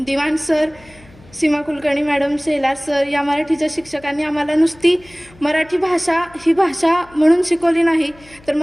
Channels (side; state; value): left; noise; hum, 25 dB below the sound